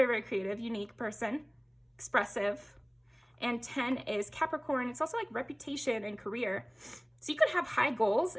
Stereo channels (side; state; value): both; identical; correlation 1.00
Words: very creative, unique person, expressive. And 10 is Capricorn. It's also like reputation and career. So you could have high goals,